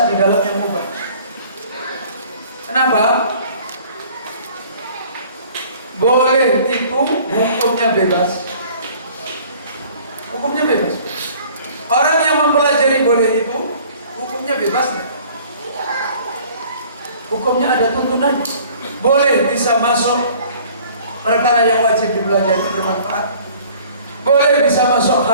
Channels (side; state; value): both; inverted; correlation -0.52